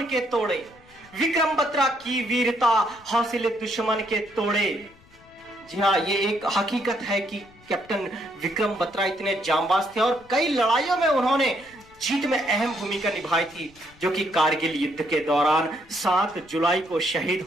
के तोड़े, विक्रम बत्रा की वीरता हौसले दुश्मन के तोड़े। जी हाँ, ये एक हकीकत है कि कैप्टन विक्रम बत्रा इतने जांबाज थे और कई लड़ाइयों में उन्होंने जीत में अहम भूमिका निभाई थी, जो कि कारगिल युद्ध के दौरान 7 जुलाई को शहीद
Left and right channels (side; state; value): left; noise; rumble, 27 dB below the sound